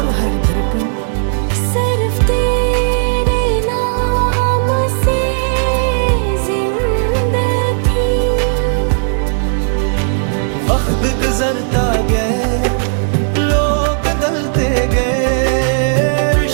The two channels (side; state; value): left; silent; digital silence